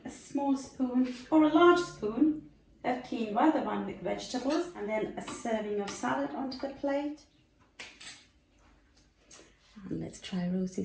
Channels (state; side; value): identical; both; correlation 1.00